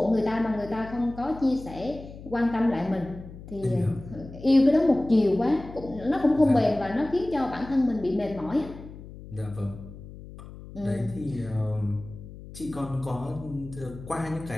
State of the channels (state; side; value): noise; left; hum, 15 dB below the sound